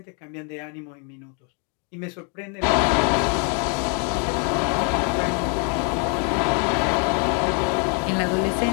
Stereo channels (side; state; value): right; quieter; 38.6 dB